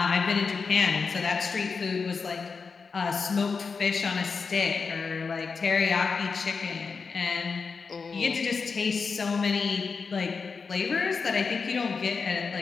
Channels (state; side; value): quieter; right; 5.0 dB